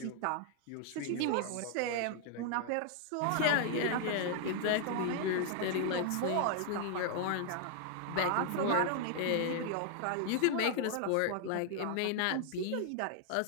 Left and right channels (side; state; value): both; different; correlation 0.00